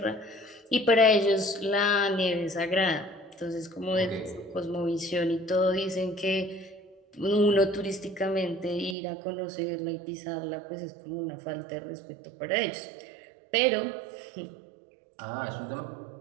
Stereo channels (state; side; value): drops out; left; at 9.0 s